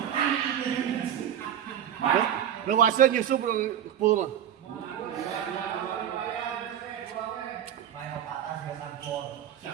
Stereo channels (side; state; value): left; quieter; 10.0 dB